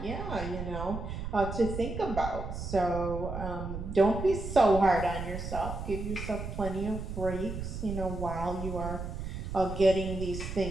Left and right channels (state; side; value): noise; right; rumble, 6 dB below the sound